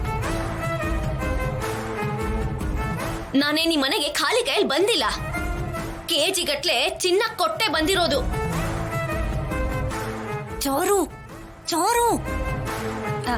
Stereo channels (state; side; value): identical; both; correlation 1.00